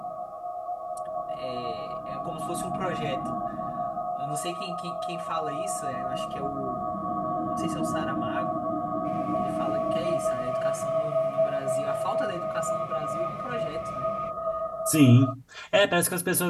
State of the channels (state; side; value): identical; both; correlation 1.00